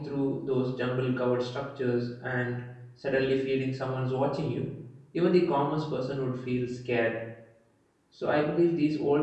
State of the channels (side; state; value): both; identical; correlation 1.00